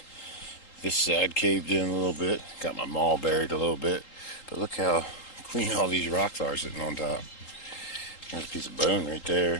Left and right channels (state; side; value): late; right; 3.8 ms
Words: this side caved in a little bit, got my maul buried a little bit, but look how clean all these rocks are sitting on top. There's a piece of bone right